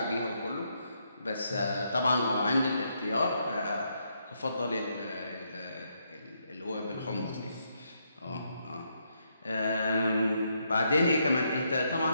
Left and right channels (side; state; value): both; inverted; correlation -0.77